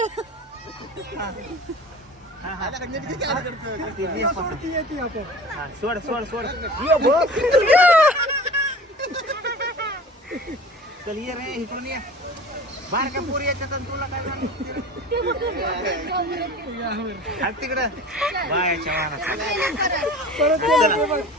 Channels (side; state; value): both; normal; correlation 0.40